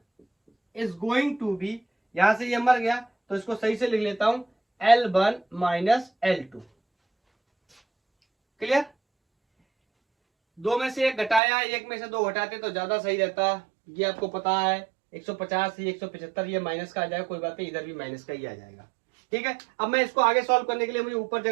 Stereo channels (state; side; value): drops out; left; at 11.4 s